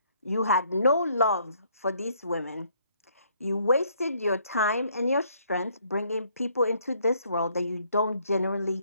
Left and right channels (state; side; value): inverted; both; correlation -0.66